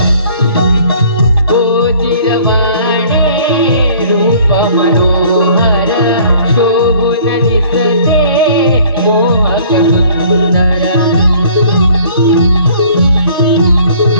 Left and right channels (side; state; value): both; inverted; correlation -0.54